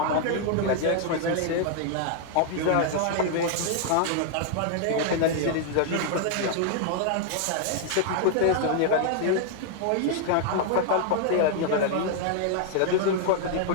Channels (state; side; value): different; both; correlation 0.00